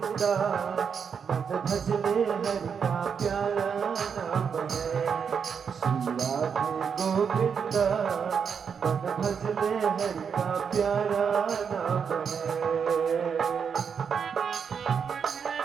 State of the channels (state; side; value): quieter; left; 6.7 dB